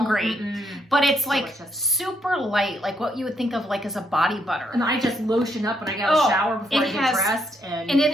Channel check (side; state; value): both; normal; correlation 0.74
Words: but it's like super light, like what you would think of like as a body butter. And I just lotion up when I get a shower before I get dressed. And it